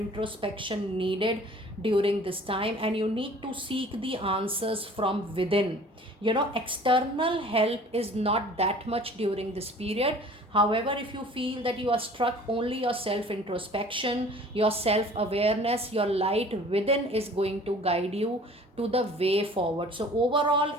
needed during this time, and you need to seek the answers from within. External help is not that much during this period. However, if you feel that you are struck only your self introspection, your self awareness, your light within is going to guide you to the way forward. So overall,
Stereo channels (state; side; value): normal; both; correlation 0.48